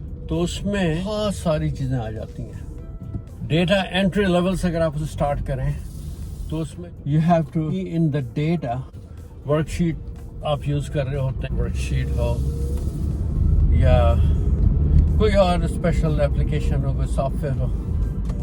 तो उसमें बहुत सारी चीजें आ जाती हैं. डेटा एंट्री लेवल से अगर आप उसे स्टार्ट करें तो उसमें you have to be in the data. Worksheet आप यूज कर रहे होते हैं, वर्कशीट हो या कोई और स्पेशल एप्लीकेशन हो, कोई सॉफ्टवेयर हो,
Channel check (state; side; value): identical; both; correlation 1.00